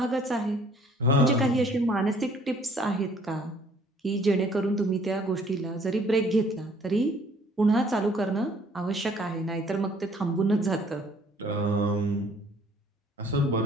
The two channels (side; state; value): both; normal; correlation 0.58